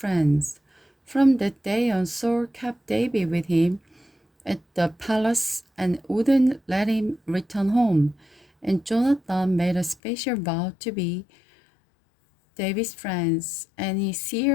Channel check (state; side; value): drops out; right; at 10.0 s